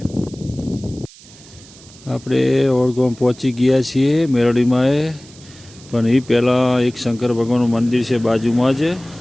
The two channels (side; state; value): right; noise; hiss, 22 dB below the sound